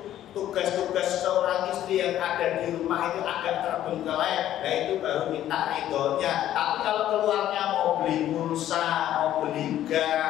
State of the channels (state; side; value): quieter; right; 12.2 dB